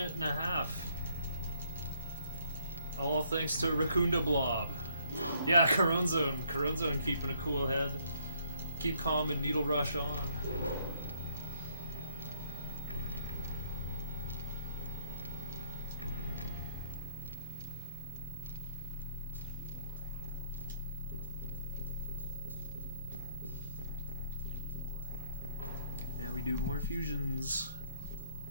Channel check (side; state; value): both; inverted; correlation -0.68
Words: and a half. All thanks to Raccoonda Blob. Yeah, Corone Zone keeping a cool head. Keep calm and needle rush on. Yeah, we do more fusions.